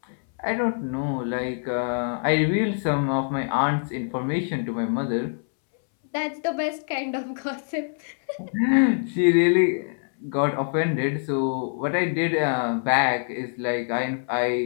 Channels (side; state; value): right; silent; 62 dB below the other